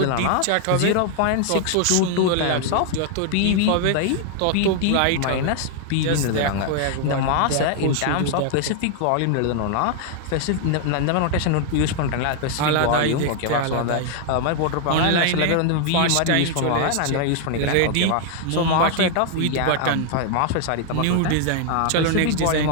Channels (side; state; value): both; different; correlation 0.00